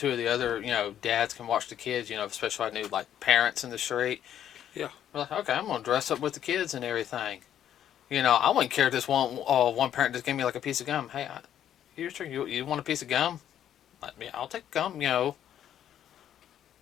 of the other, dads can watch the kids. Especially if I knew like parents in the street. Yeah. We're like, okay, I'm gonna dress up with the kids and everything. I wouldn't care if this one parent just gave me like a piece of gum. Hey, you want a piece of gum? Yeah, I'll take gum.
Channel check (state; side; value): quieter; right; 10.5 dB